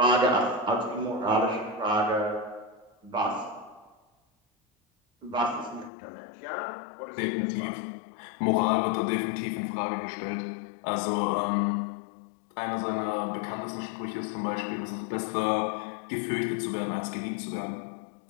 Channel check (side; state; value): right; drops out; at 5.9 s